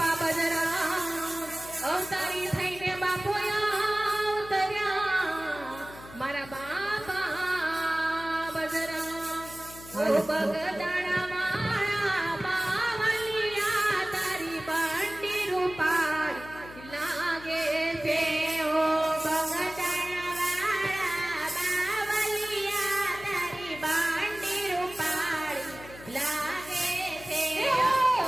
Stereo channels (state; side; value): noise; left; hum, 17 dB below the sound